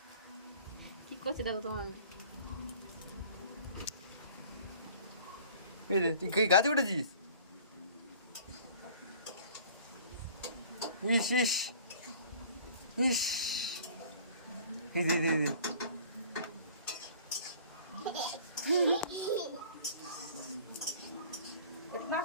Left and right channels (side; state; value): both; inverted; correlation -0.49